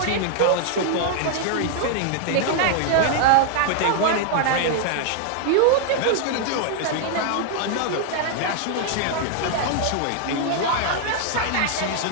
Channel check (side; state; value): both; different; correlation 0.00